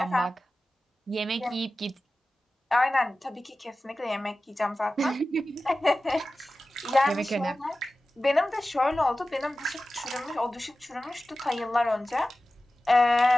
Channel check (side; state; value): both; normal; correlation 0.95